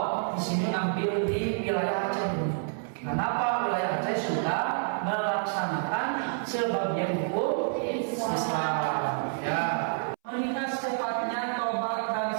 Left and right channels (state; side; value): silent; left; 59 dB below the other